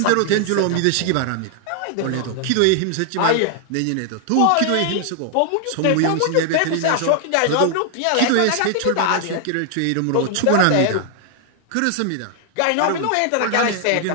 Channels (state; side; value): different; both; correlation 0.00